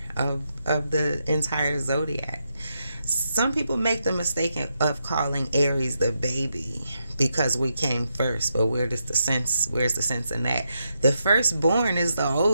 of the entire zodiac. Some people make the mistake of calling Aries the baby because we came first, but where's the sense in that? The firstborn is the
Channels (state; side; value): inverted; both; correlation -0.83